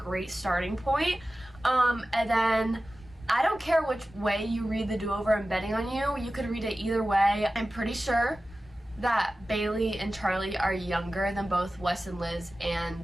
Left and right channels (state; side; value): normal; both; correlation 0.95